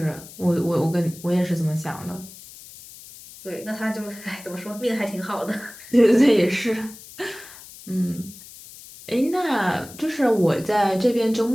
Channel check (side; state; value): left; noise; hiss, 18 dB below the sound